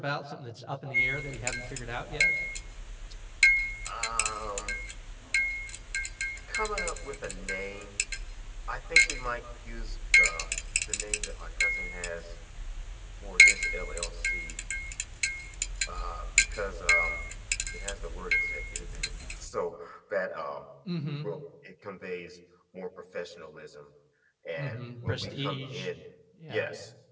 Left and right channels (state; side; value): identical; both; correlation 1.00